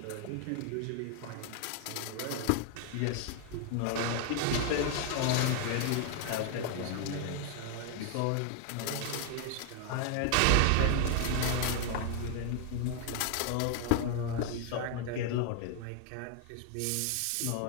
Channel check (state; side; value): different; both; correlation 0.00